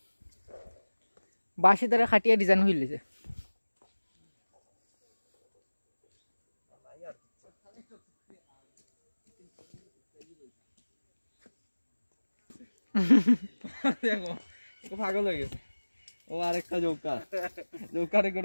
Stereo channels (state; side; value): inverted; both; correlation -1.00